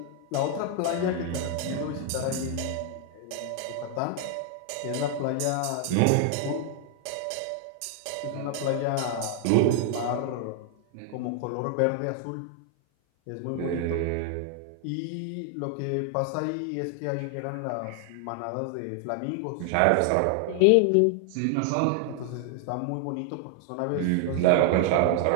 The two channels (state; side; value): different; both; correlation 0.00